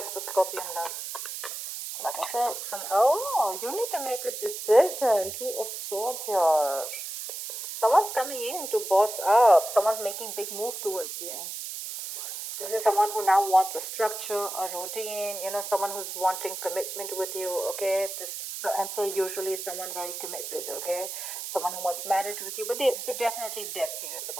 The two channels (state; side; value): noise; right; hiss, 7 dB below the sound